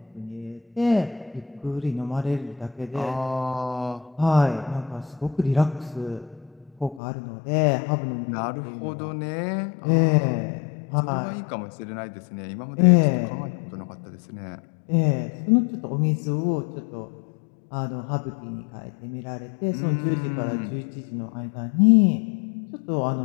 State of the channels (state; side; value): drops out; right; at 7.0 s